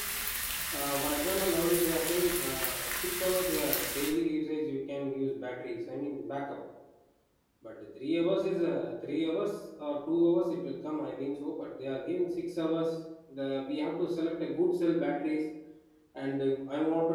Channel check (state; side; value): identical; both; correlation 1.00